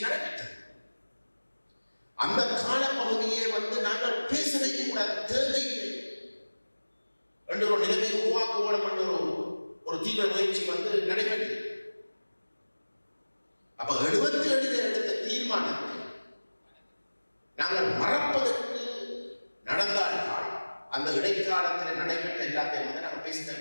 நடைபெற்றது. அந்த காலப்பகுதியை வந்து நாங்கள் பேசவே கூடாது, தேவையில்லை என்ற ஒரு நிலைமை உருவாக்குவோம் என்ற ஒரு தீவிர முயற்சி வந்து நடைபெற்றது. அப்ப 77 எடுத்த தீர்மானத்தை நாங்கள் மறப்பதற்கு நடந்தால்தான் அந்த இடைக்காலத்தில் நடைபெற்ற எல்லாத்தையும் வந்து நாங்கள்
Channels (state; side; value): inverted; both; correlation -1.00